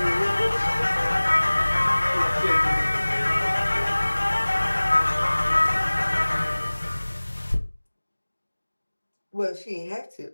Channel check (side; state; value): both; inverted; correlation -1.00